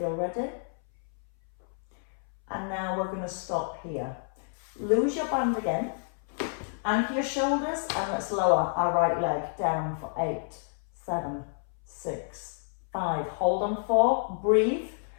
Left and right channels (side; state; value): right; silent; 58 dB below the other